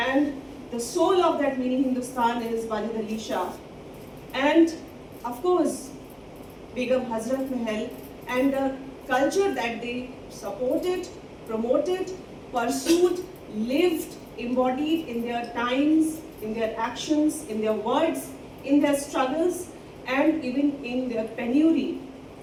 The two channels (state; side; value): identical; both; correlation 1.00